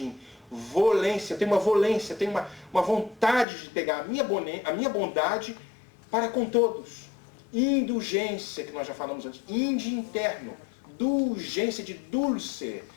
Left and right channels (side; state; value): right; drops out; at 3.5 s